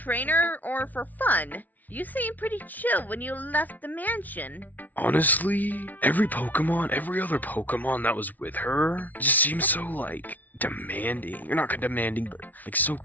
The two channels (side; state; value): right; late; 0.078 ms